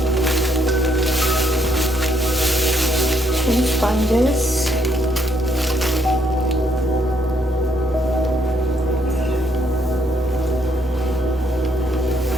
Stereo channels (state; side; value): normal; both; correlation 0.72